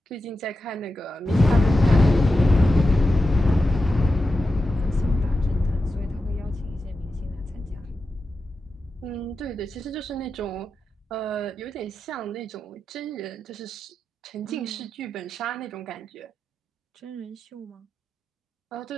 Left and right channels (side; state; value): both; normal; correlation 0.91